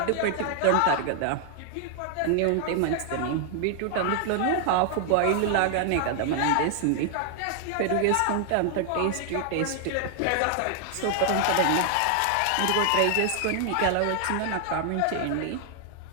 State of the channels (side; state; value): both; different; correlation 0.00